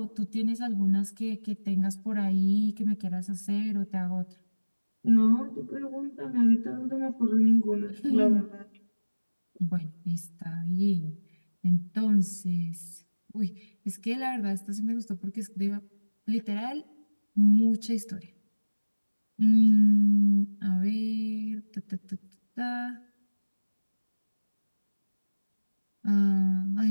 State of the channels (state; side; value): inverted; both; correlation -1.00